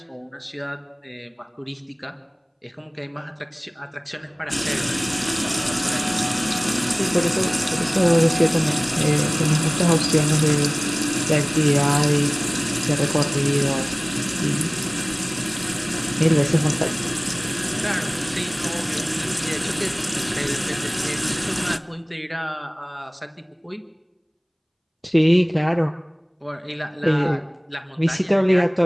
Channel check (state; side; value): identical; both; correlation 1.00